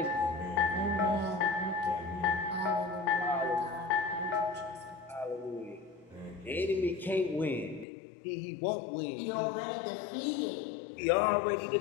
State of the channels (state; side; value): drops out; right; at 7.9 s